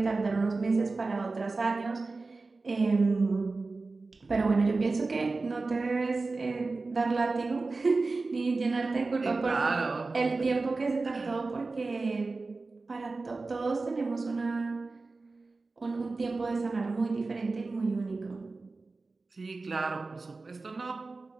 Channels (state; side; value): quieter; left; 3.7 dB